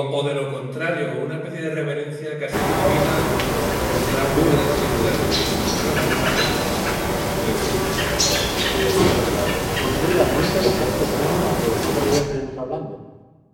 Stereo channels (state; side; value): identical; both; correlation 1.00